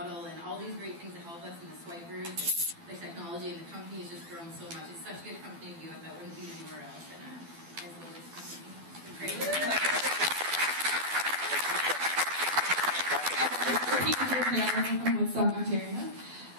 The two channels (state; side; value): late; left; 12 ms